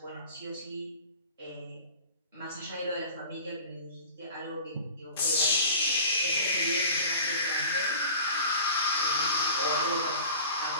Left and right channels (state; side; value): inverted; both; correlation -0.39